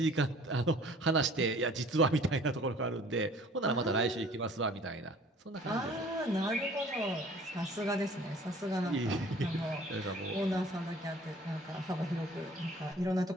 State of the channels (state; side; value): normal; both; correlation 0.51